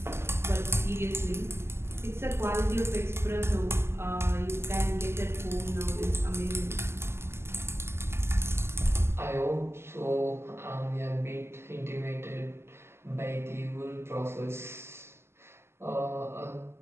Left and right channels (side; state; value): left; late; 0.12 ms